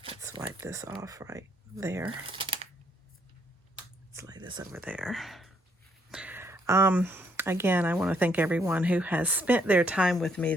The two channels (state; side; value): normal; both; correlation 0.71